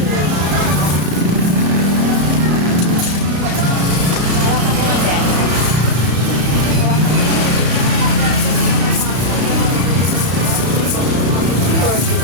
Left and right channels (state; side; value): late; left; 33 ms